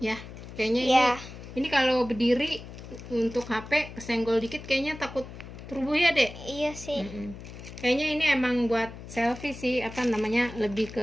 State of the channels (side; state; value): left; noise; hum, 13 dB below the sound